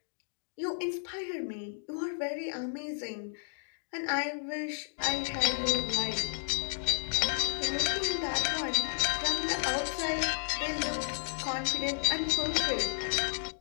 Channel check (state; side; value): silent; right; digital silence